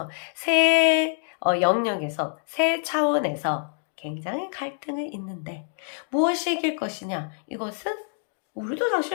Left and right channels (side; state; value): right; silent; 61 dB below the other